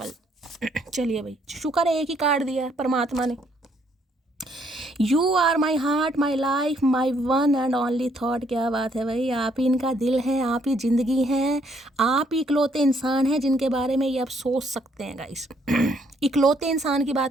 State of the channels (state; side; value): normal; both; correlation 0.69